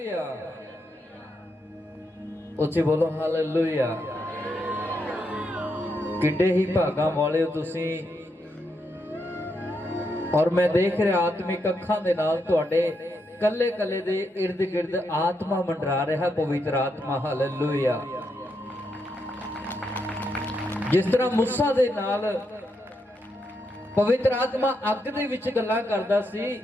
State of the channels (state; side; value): normal; both; correlation 0.81